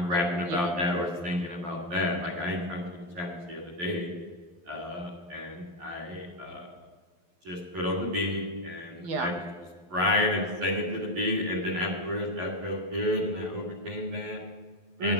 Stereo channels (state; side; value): late; left; 12 ms